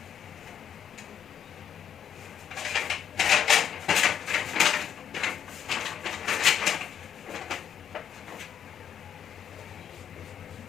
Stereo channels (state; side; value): quieter; right; 8.9 dB